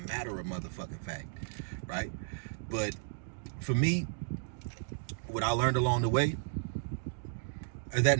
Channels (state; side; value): silent; left; digital silence